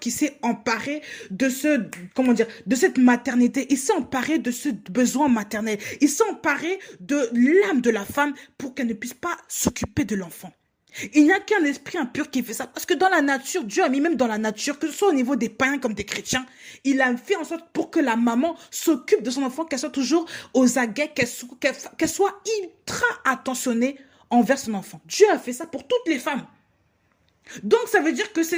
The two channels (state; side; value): identical; both; correlation 1.00